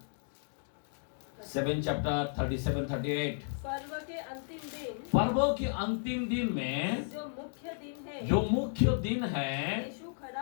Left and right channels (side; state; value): right; silent; digital silence